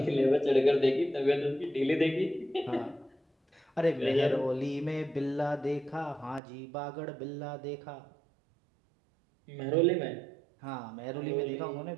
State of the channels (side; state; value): left; drops out; at 6.4 s